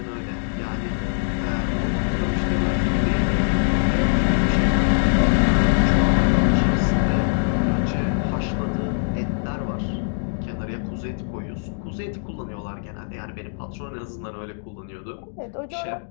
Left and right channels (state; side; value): silent; right; digital silence